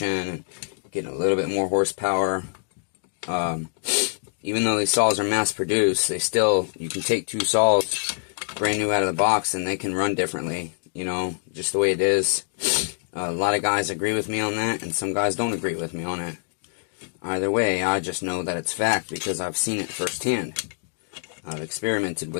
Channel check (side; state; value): right; silent; digital silence